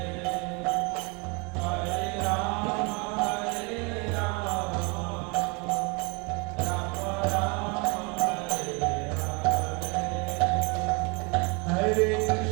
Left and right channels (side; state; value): left; quieter; 31.0 dB